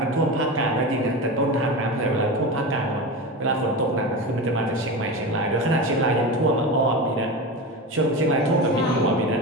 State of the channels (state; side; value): normal; both; correlation 0.24